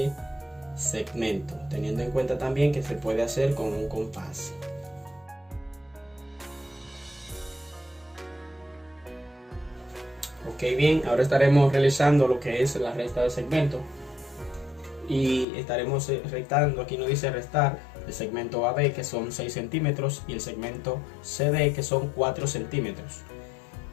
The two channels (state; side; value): drops out; right; at 15.5 s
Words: segmento, teniendo en cuenta también que se puede hacer con un compás. Ok, bien, ahora estaremos realizando lo que es la resta de segmento y estaremos restando. Aquí nos dice restar el segmento AB, que son 6 centímetros, y el segmento CD, que son 4 centímetros.